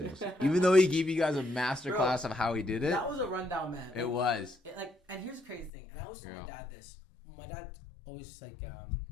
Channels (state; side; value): drops out; right; at 5.7 s